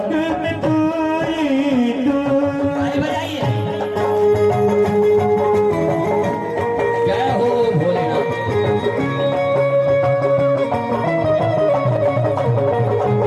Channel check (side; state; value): both; identical; correlation 1.00